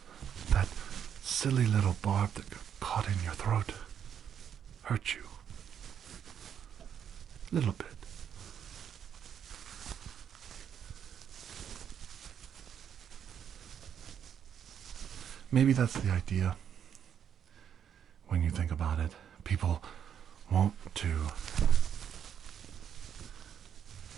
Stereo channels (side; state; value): left; quieter; 8.6 dB